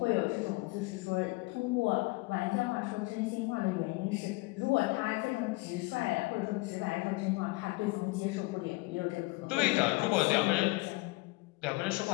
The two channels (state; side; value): quieter; right; 24.0 dB